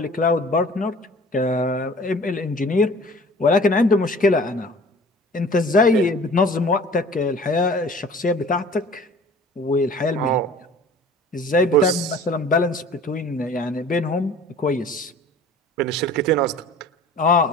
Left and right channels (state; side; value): normal; both; correlation 0.46